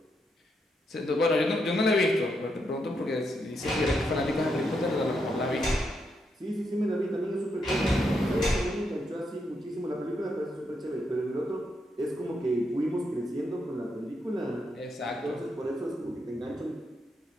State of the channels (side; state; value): both; normal; correlation 0.80